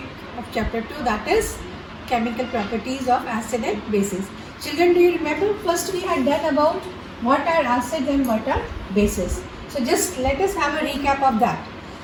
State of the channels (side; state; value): both; identical; correlation 1.00